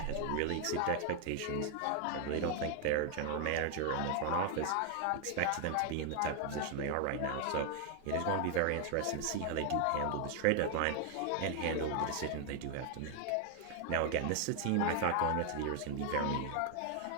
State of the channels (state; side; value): different; both; correlation 0.00